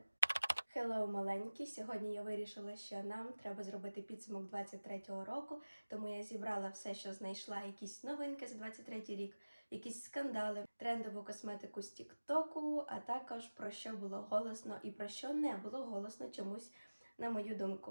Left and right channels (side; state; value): both; inverted; correlation -1.00